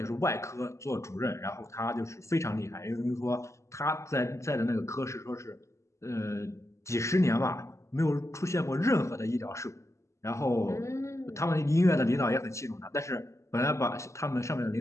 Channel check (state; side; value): late; right; 0.14 ms